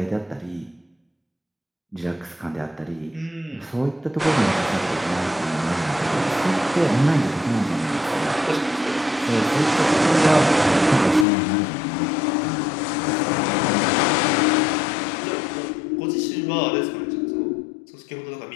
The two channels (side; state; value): right; drops out; at 11.2 s